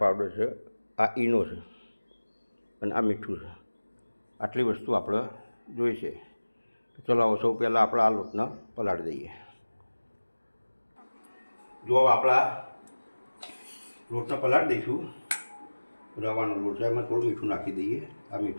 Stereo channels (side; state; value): both; inverted; correlation -1.00